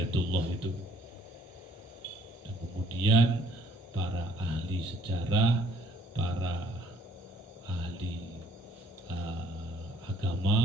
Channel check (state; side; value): normal; both; correlation 0.61